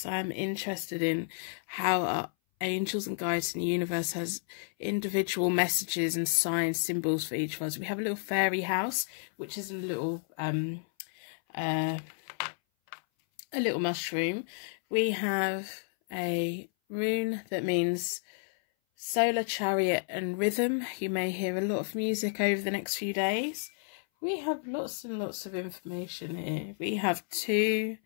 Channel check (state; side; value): silent; right; 57 dB below the other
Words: I'm interested in how our angels and guides in the universe has individual messages and signs, symbols for each of us. We have a little fairy house, which is a little mushroom. We have a rune that means solar chariot and rhythm. You may hear a lot of music over the next few days. We have lots and lots of information here. We have 2